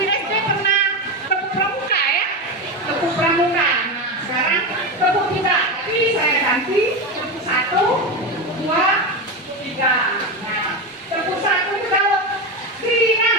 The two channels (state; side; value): normal; both; correlation 0.17